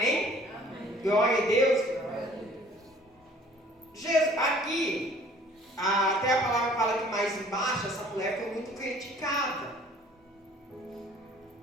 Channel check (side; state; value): both; normal; correlation 0.53